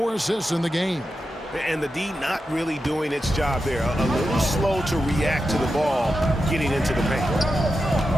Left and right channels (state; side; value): normal; both; correlation 0.89